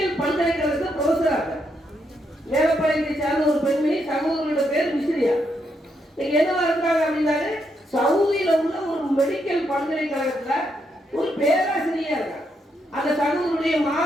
பல்கலைக்கழகத்தில் ப்ரொஃபஸரா இருக்காங்க. மேலப்பாளையத்தை சார்ந்த ஒரு பெண்மணி, சகோதரியோட பேர் மிஸ்ரியா. இன்னைக்கு என்னவா இருக்காங்க அப்படின்னாரு, சவுதியில உள்ள ஒரு மெடிக்கல் பல்கலைக்கழகத்துல ஒரு பேராசிரியரா இருக்காங்க. அந்த சகோதரருடைய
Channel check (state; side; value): normal; both; correlation 0.78